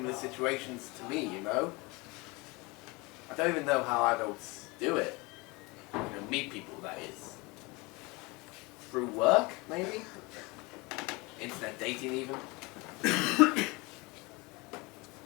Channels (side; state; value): right; quieter; 25.5 dB